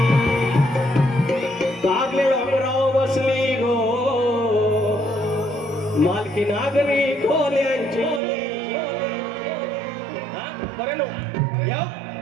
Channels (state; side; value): drops out; left; at 8.2 s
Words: कारले डोंगराव बसली गो मालकी नागरी खोल्यांची. बरं नो